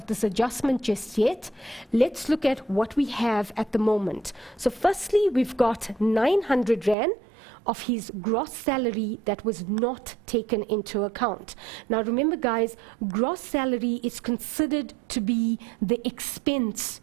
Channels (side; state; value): left; drops out; at 7.0 s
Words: this adjustment just yet. Let's look at what we have at the moment. So firstly, we've got 900 Rand of his gross salary that was not taken into account. Now remember, guys, gross salary is considered to be the expense